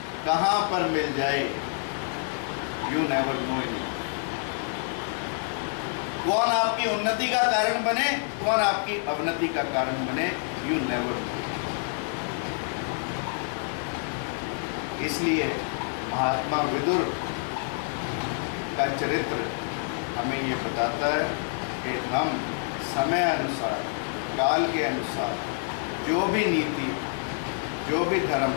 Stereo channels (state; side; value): silent; right; 60 dB below the other